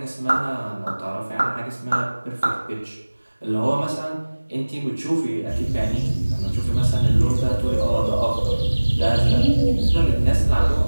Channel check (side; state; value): both; inverted; correlation -1.00